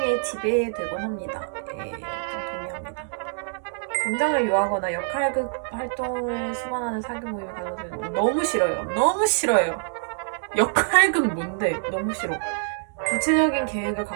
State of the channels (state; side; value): silent; left; 60 dB below the other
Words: 지배되곤 합니다. 좀 동의합니다. 감정을 유하거나 역할극 활동을 수반하는 사교 모임을 가져서 너무 싫어요. 역할극 뭔데? 너무 싫어. 구체적인 계획을